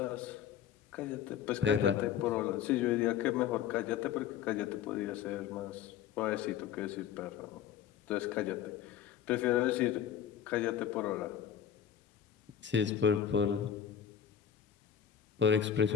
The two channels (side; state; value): right; quieter; 8.9 dB